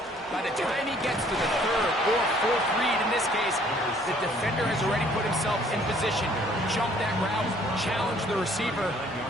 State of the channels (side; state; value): both; normal; correlation 0.59